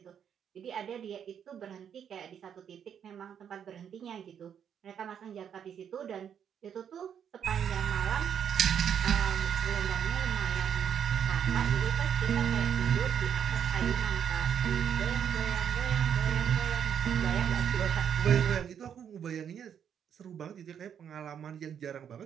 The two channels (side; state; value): left; quieter; 8.4 dB